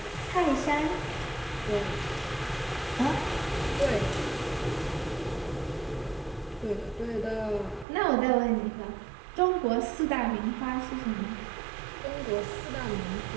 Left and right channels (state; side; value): drops out; left; at 7.9 s